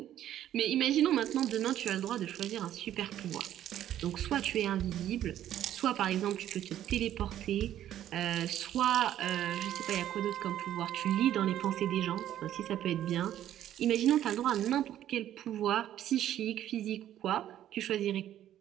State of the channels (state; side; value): quieter; left; 11.8 dB